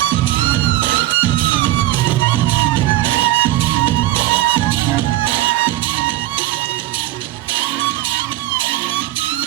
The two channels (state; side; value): quieter; left; 16.1 dB